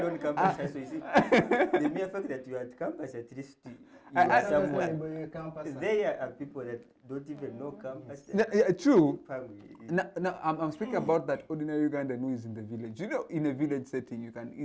The mere fact that you are at campus, at least you are somewhere. There are people that don't even know campus. True. Now, I'm speaking about that ordinary Ugandan who is in the village. You know, in a village setting, you can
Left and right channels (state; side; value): identical; both; correlation 1.00